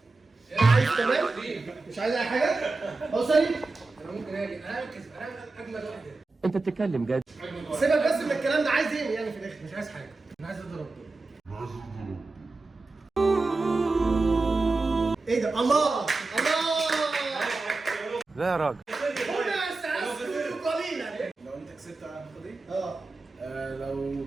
عايز تمام؟ مش عايز اي حاجه؟ اوصلي؟ انا ممكن اجي انا اجمل واحد. انت بتتكلم جد؟ سيبك بس من الكلام ده، عايز ايه يعني في الاخر؟ مش عايز حاجه، انا عايز اضرب دول. ايه ده؟ الله الله. لا يا راجل. لو انت كسبت هاخد ايه؟ لو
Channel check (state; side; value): quieter; left; 3.5 dB